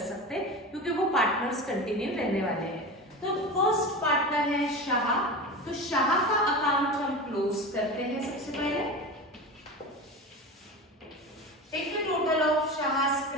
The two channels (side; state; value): both; normal; correlation 0.28